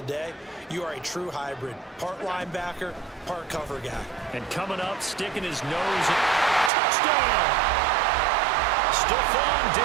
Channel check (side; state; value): left; drops out; at 6.7 s